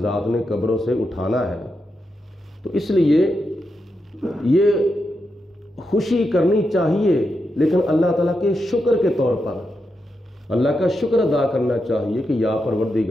ذات نے قبروں سے اٹھانا ہے۔ تو اس لیے یہ خوشی کرنی چاہیے، لیکن اللہ تعالیٰ کے شکر کے طور پر اللہ کا شکر ادا کرنا چاہیے کہ یا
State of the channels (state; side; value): normal; both; correlation 0.86